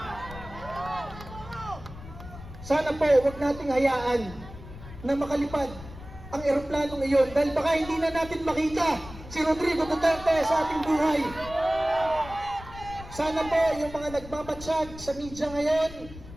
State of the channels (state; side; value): noise; left; rumble, 15 dB below the sound